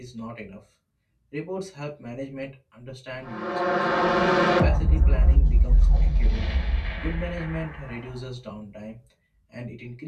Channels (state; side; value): identical; both; correlation 1.00